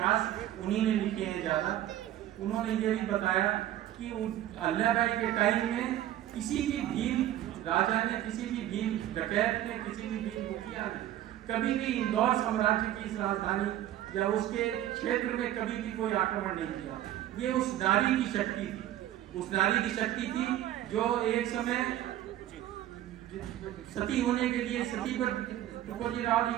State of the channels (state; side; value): quieter; left; 12.9 dB